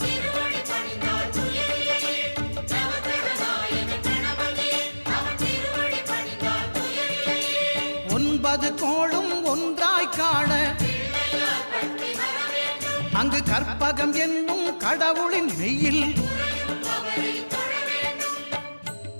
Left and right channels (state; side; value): inverted; both; correlation -1.00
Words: ஒன்பது கோளும் ஒன்றாய் காண அங்கு கற்பகம் என்னும் கடவுளின் மெய்யில்